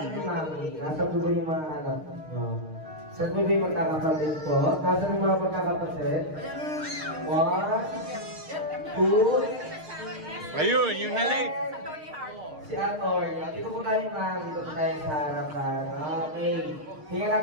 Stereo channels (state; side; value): late; left; 6.5 ms